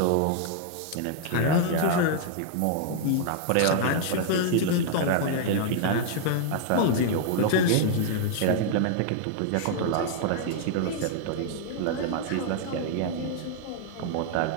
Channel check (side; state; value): both; different; correlation -0.01